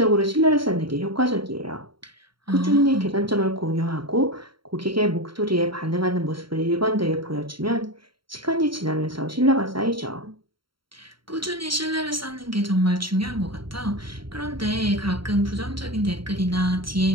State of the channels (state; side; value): late; left; 0.73 ms